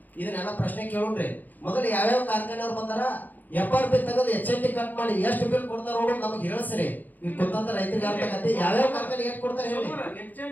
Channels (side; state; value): right; late; 0.084 ms